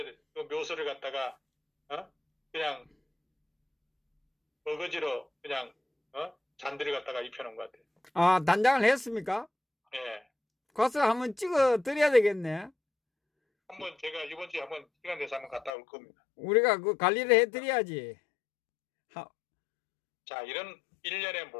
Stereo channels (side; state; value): right; drops out; at 15.7 s